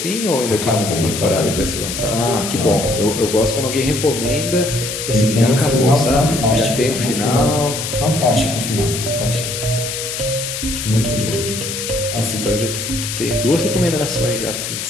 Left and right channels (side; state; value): left; noise; hiss, 5 dB below the sound